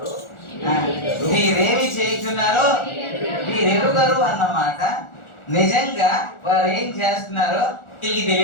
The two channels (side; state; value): right; late; 1.4 ms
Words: మీరేమి చేస్తున్నారో మీరు ఎరుగరు అన్నమాట. నిజంగా వారు ఏం చేస్తున్నారో వీళ్ళకి